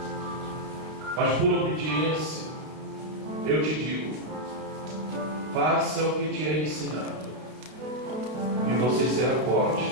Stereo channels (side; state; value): left; late; 32 ms